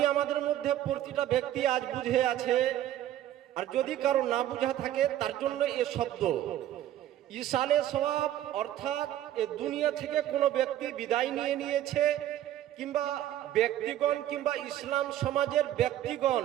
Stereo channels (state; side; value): quieter; left; 12.6 dB